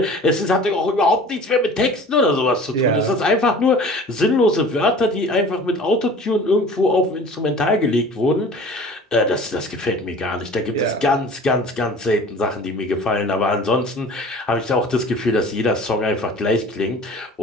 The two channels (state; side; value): normal; both; correlation 0.44